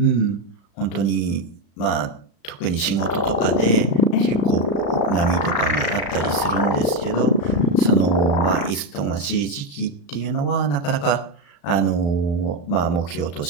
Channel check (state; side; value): late; right; 35 ms